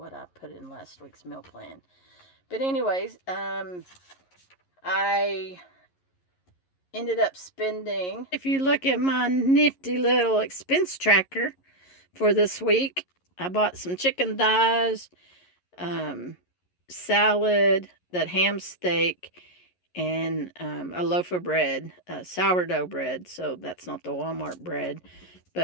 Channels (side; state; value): right; late; 11 ms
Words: I put in last week's meal plan. But anyways, I ended up spending, if you look at my nifty little expense tracker for this week, I bought some chicken thighs, salad, that ham steak, and a loaf of bread, sourdough bread. So that's not the Walmart bread,